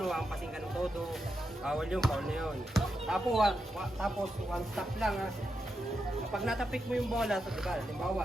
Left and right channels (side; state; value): both; normal; correlation 0.86